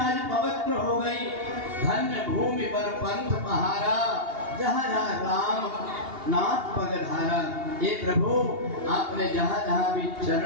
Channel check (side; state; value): left; late; 2.8 ms